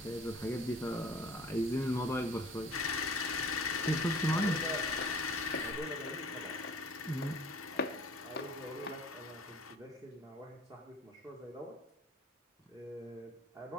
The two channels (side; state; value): both; normal; correlation 0.48